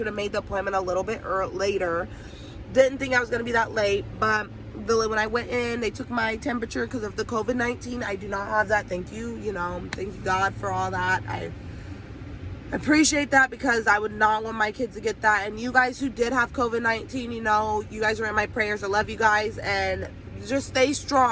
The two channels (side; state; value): both; identical; correlation 1.00